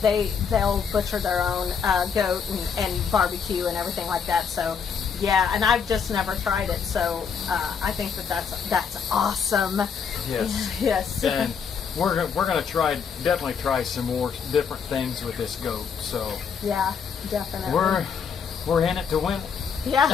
they'll butcher their own goat and barbecue and everything like that. So yeah, and I've just never tried it. So I think that's awesome. Yes. Yes. And we're gonna definitely try some more different things with this goat. So Yeah, definitely. we're in it to win. Yeah.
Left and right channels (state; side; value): quieter; right; 6.5 dB